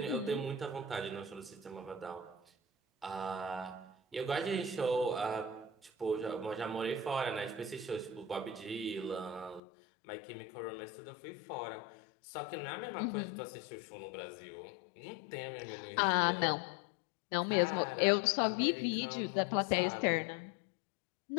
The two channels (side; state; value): right; drops out; at 9.6 s